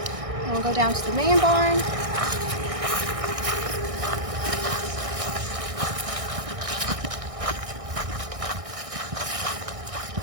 And we'll go down to the main barn.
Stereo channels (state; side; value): late; left; 1.6 ms